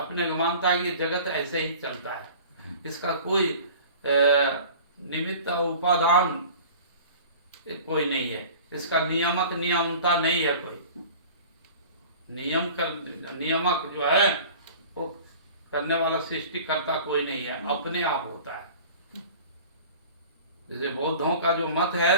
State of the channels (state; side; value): inverted; both; correlation -0.42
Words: को मानता है कि जगत ऐसे ही चलता है, इसका कोई निमित्त उपादान कोई नहीं है, इसका नियामक नियमता नहीं है, कोई नियामक जो है वो करने वाला सृष्टि करता कोई नहीं है, अपने आप होता है। जैसे बौद्धों का जो मत